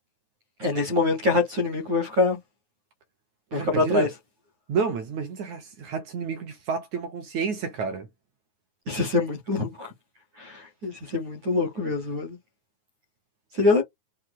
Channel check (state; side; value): late; left; 9.4 ms